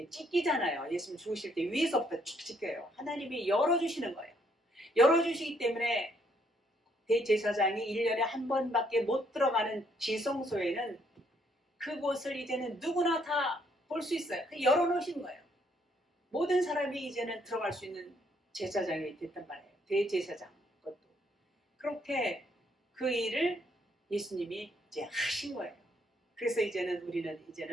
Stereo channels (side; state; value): both; normal; correlation 0.70